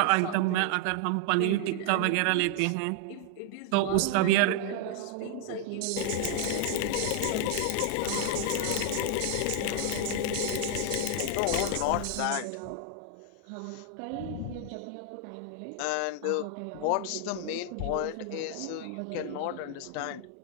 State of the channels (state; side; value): different; both; correlation 0.00